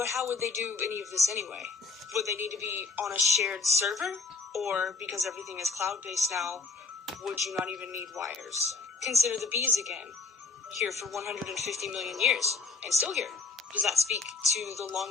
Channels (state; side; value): quieter; right; 4.3 dB